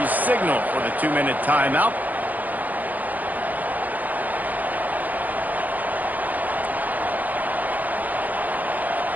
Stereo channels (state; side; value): late; left; 0.082 ms